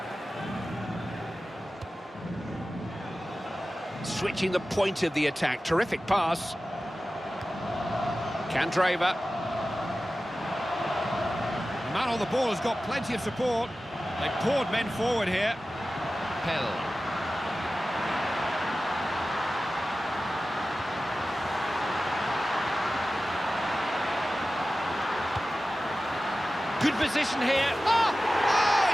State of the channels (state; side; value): normal; both; correlation 0.95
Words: Switching the point of the attack. Terrific pass. Candreva. The man on the ball has got plenty of support. They poured men forward here. Pell. Good position here. Oh! Oh,